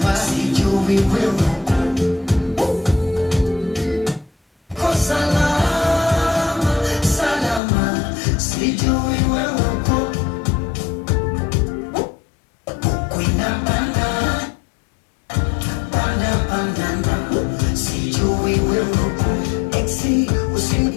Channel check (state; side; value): drops out; right; at 7.6 s